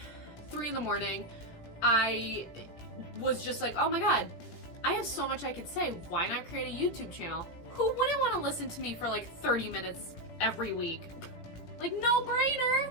3 in the morning. I was just like, oh my God, I have so much I could say. Why not create a YouTube channel? Who wouldn't want to listen to me for like 30 minutes every week? Like, no brainer.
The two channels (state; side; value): late; right; 17 ms